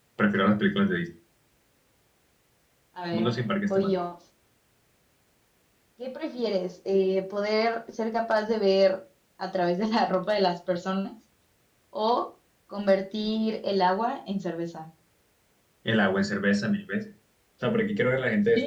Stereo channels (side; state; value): both; identical; correlation 1.00